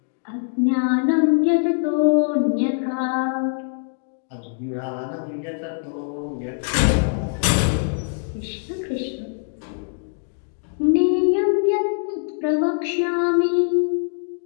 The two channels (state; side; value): silent; right; digital silence